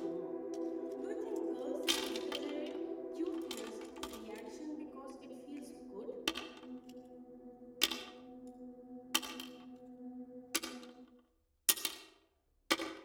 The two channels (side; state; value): both; identical; correlation 1.00